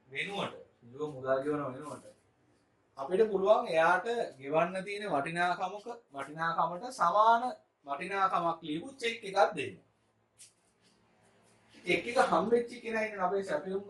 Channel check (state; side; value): identical; both; correlation 1.00